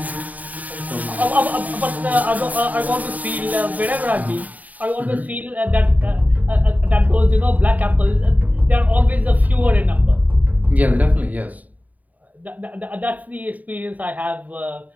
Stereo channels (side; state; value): left; late; 0.075 ms